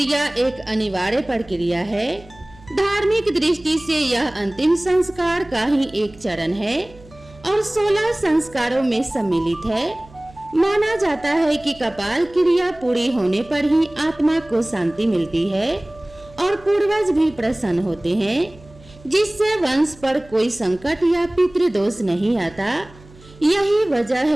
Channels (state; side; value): noise; right; hum, 23 dB below the sound